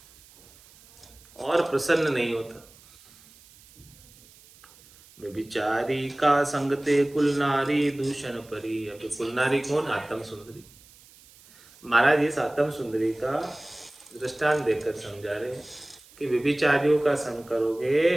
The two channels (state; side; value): noise; right; hiss, 25 dB below the sound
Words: और प्रसन्न नहीं होता। व्यभिचारी का संगते कुल नारी दूषण परी। अब कुल नारी कौन? आत्म सुंदरी। महाराज इस आत्म सुंदरी का दृष्टांत देकर समझा रहे हैं कि व्यभिचारियों का संग करोगे